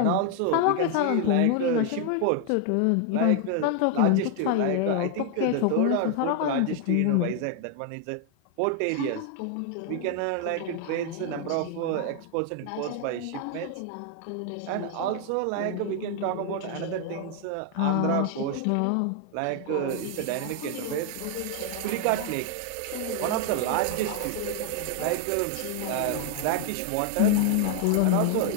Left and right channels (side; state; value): both; different; correlation 0.00